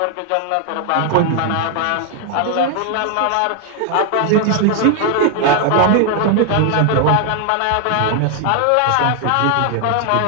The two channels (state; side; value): different; both; correlation 0.00